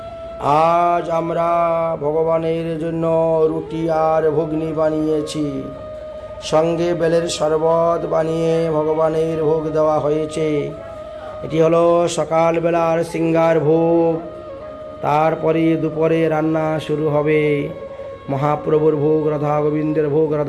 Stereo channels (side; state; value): both; identical; correlation 1.00